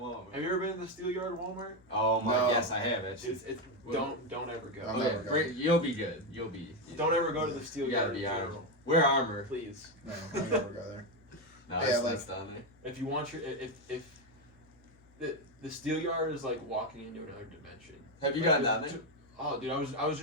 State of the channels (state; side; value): normal; both; correlation 0.08